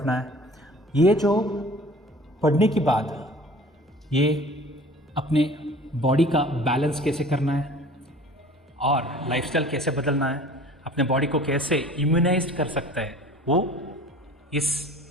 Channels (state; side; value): normal; both; correlation 0.45